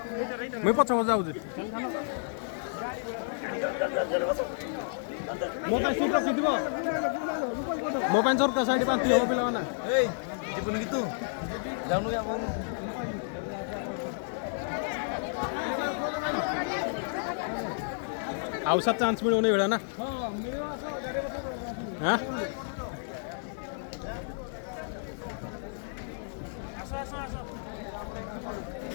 मैं पछ जाउछि मो पे सीट रखि दिबो मो पे सरका साइड पांती हो पिला माने ए जीवन की तू जाउनु या औसा चान्स मिळू नाही वेळा ना हां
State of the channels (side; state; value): right; silent; digital silence